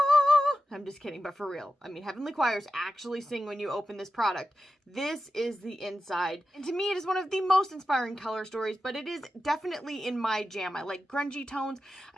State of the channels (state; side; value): normal; both; correlation 0.91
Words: I'm just kidding, but for real. I mean, Heavenly Choirs actually sing when you open this product. This is the inside. And to me, it is one of the most inspiring color stories, but it is definitely in my jam. I like grungy tones.